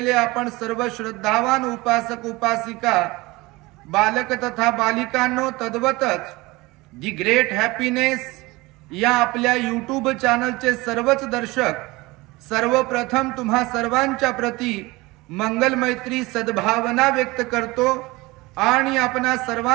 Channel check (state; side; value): quieter; left; 22.0 dB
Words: आपण सर्व श्रद्धावान उपासक उपासिका बालक तथा बालिकांनो, तद्वतच दी ग्रेट हॅपीनेस या आपल्या यूट्यूब चॅनलचे सर्वच दर्शक, सर्वप्रथम तुम्हा सर्वांच्या प्रती मंगल मैत्री सद्भावना व्यक्त करतो आणि आपणा